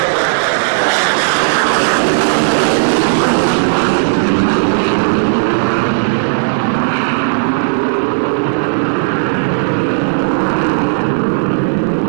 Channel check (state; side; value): silent; left; digital silence